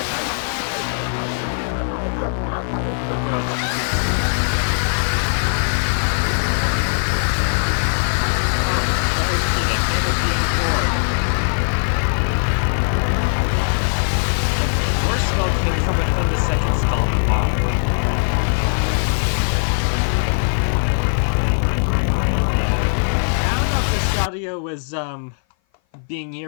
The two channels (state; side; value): silent; right; 57 dB below the other